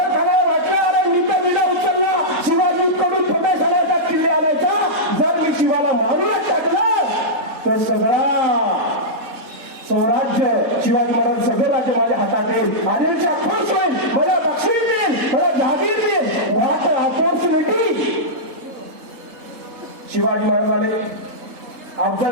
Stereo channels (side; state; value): left; late; 3.7 ms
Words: खानाला वाटलं, अरे मी तर विडा उचलला, शिवाजी कडून प्रदेश आणायचा, किल्ले आणायचा, जर मी शिवाला मारूनच टाकलं तर सगळा स्वराज्य, शिवाजी महाराज सगळं राज्य माझ्या हातात येईल, आदिलशाह खुश होईल, मला बक्षीस देईल, मला जहागीर देईल, वाट आपोर्स मिटली. शिवाजी महाराज आले.